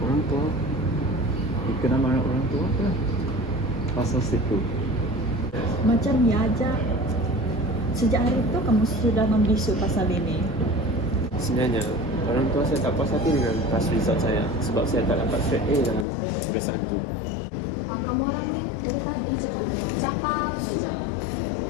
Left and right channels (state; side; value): drops out; right; at 16.1 s